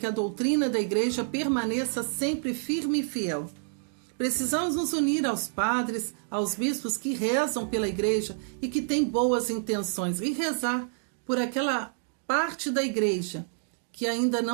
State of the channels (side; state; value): left; silent; digital silence